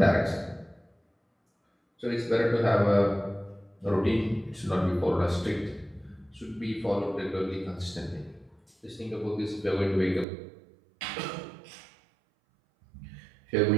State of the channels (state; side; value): drops out; left; at 10.2 s